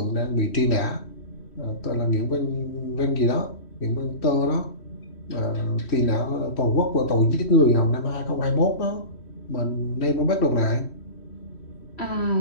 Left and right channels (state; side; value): late; right; 3.1 ms